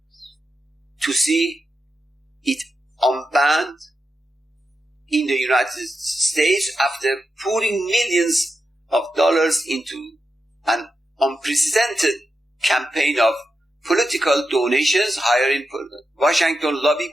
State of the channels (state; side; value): normal; both; correlation 0.88